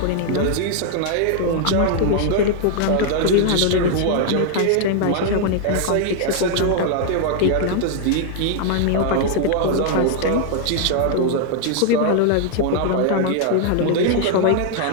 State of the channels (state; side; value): different; both; correlation 0.00